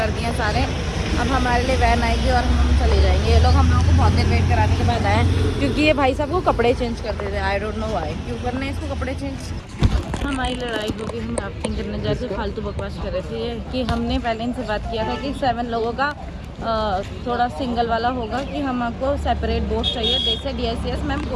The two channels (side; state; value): both; identical; correlation 1.00